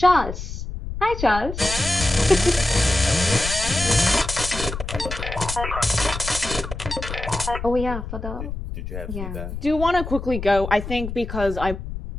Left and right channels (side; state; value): left; noise; rumble, 7 dB below the sound